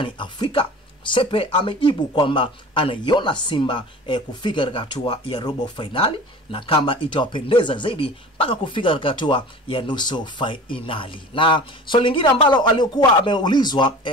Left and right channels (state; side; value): normal; both; correlation 0.40